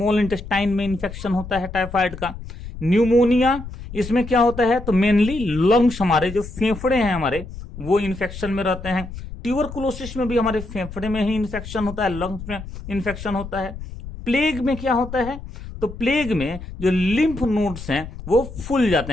इंटेस्टाइन में इन्फेक्शन होता है टाइफाइड का। न्यूमोनिया, इसमें क्या होता है, तो मेनली लंग्स, हमारे जो फेफड़े हैं हमारे, वो इन्फेक्शन में रहते हैं। ट्यूबरकुलोसिस में भी हमारे फेफड़े में ही इन्फेक्शन होता है, लंग्स में इन्फेक्शन होता है। प्लेग में क्या होता है, तो प्लेग में जो लिम्फ नोड्स हैं वो फूल जाते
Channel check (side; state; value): left; noise; rumble, 12 dB below the sound